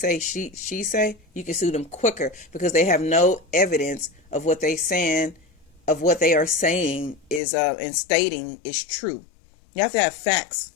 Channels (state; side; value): drops out; right; at 7.4 s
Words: she say, you can sue them quicker, because they have no evidence of what they saying, of what they are saying is and stating is true. You have to have facts.